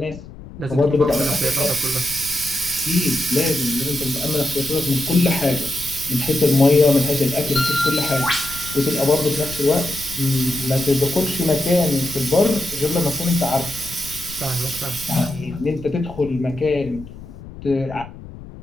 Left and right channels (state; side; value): noise; left; rumble, 15 dB below the sound